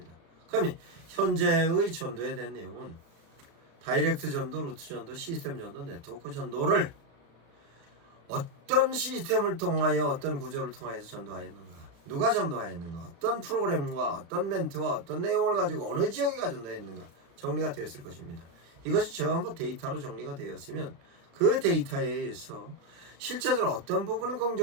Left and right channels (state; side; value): late; left; 36 ms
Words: 그러면 현재의 전도에 대한 내용은 다이렉트 전도, 루트 전도, 시스템 전도, 네트워크 전도를 어떤 시스템을 통하여 어떤 구조를 통하여서 전도하였는가, 누가 전도하였는가, 어떤 프로그램과 어떤 멘트와 어떤 내용을 가지고 어느 지역에 전도했는가 정리가 되었을 것입니다. 이것이 전부 데이터로 정리가 되었으면 그 데이터에 의해서 실제적으로 어떤 부분은